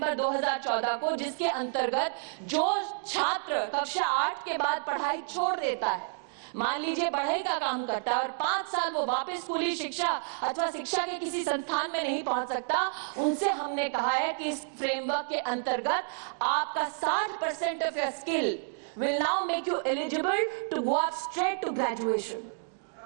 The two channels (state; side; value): silent; left; digital silence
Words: 2014 को, जिसके अंतर्गत जो छात्र कक्षा 8 के बाद पढ़ाई छोड़ देता है, मान लीजिए बढ़ई का काम करता है और 5 साल वो वापस स्कूली शिक्षा अथवा शिक्षा के किसी संस्थान में नहीं पहुंच सकता, उनसे हमने कहा है कि इस फ्रेमवर्क के अंतर्गत आपका 60% of your skill will now make you eligible to go up straight to graduation.